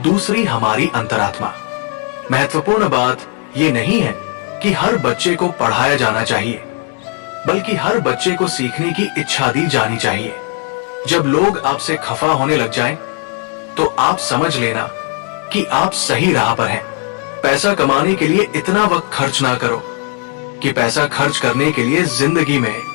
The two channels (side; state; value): right; quieter; 34.8 dB